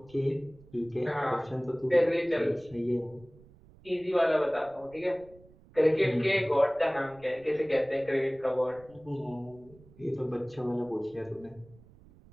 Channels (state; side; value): noise; right; rumble, 24 dB below the sound